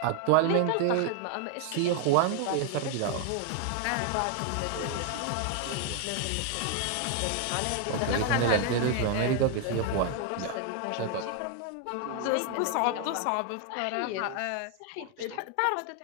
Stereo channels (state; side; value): different; both; correlation 0.00